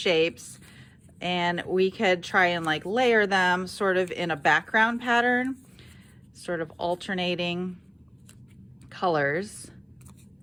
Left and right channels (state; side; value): identical; both; correlation 1.00